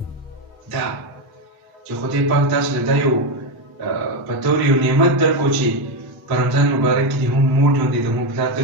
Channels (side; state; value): both; normal; correlation 0.09